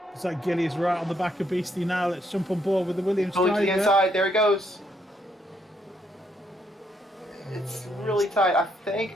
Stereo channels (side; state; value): both; normal; correlation 0.74